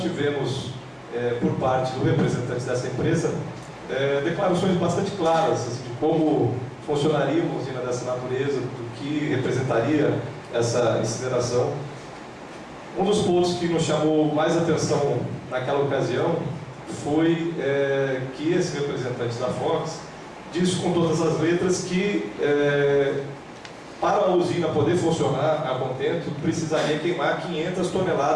tivemos, por parte do representante dessa empresa, declarações bastante claras assim, de como funcionaria uma usina dessa natureza, do que representaria essa incineração. Um dos pontos que nos chamou mais atenção naquela ocasião foi que esse representante da Fox disse com todas as letras que para a usina poder funcionar a contento, precisaria queimar 500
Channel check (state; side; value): identical; both; correlation 1.00